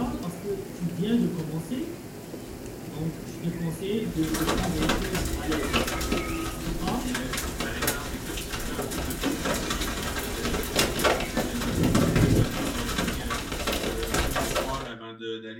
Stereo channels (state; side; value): identical; both; correlation 1.00